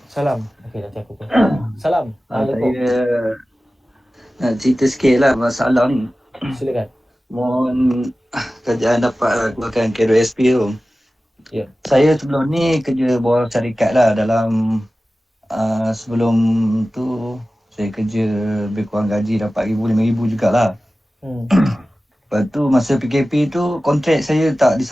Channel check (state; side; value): normal; both; correlation 0.96